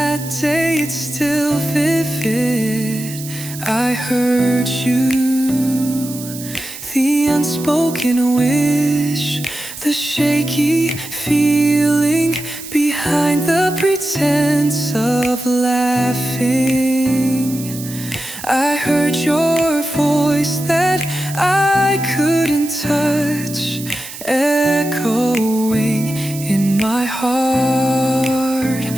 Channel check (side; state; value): right; noise; hiss, 12 dB below the sound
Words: day, it's still vivid. I heard you, the unspoken wish, the shaky feeling behind the pretense of laughing. I heard your voice that I couldn't touch, echoing in my heart.